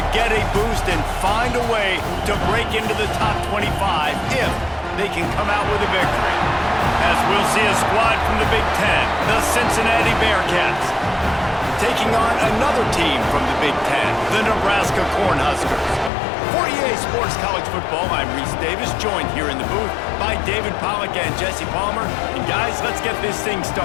get a boost and find a way to break into the top 25 if they can come out with a victory. As we'll see a squad from the Big Ten, the Cincinnati Bearcats, taking on another team from the Big Ten, the Nebraska Cornhuskers. For EA Sports College Football, I'm Reese Davis, joined here in the booth by David Pollack and Jesse Palmer. And guys, let's get this thing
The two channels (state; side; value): drops out; right; at 16.1 s